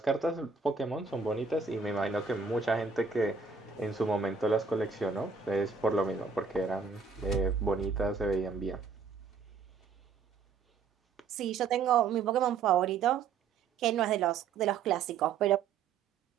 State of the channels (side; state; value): left; quieter; 5.4 dB